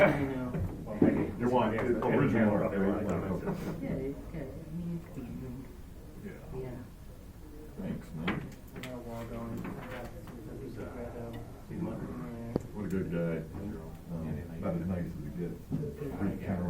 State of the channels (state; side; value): identical; both; correlation 1.00